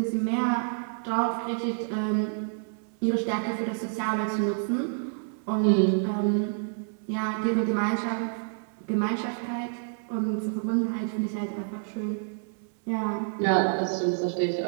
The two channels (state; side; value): silent; left; 57 dB below the other